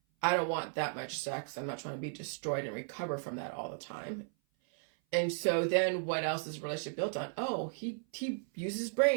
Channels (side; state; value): left; silent; 54 dB below the other